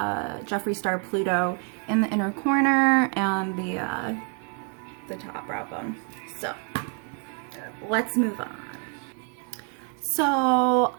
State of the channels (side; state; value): left; quieter; 36.8 dB